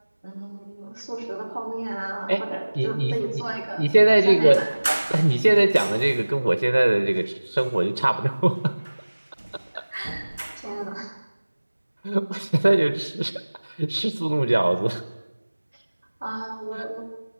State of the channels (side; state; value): both; inverted; correlation -1.00